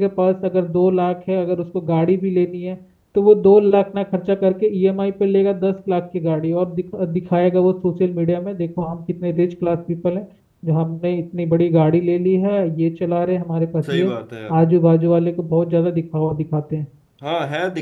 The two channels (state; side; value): identical; both; correlation 1.00